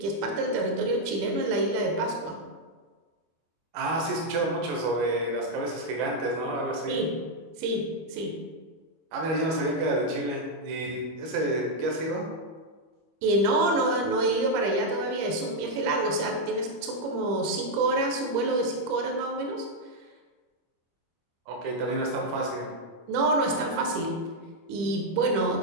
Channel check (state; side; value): late; left; 25 ms